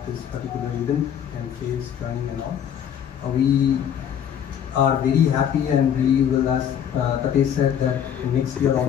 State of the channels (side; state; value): right; quieter; 9.0 dB